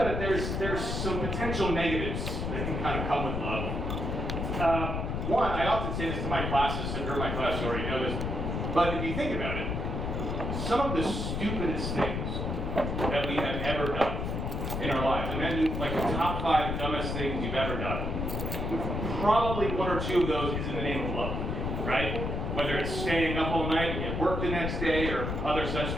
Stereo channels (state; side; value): noise; left; rumble, 2 dB below the sound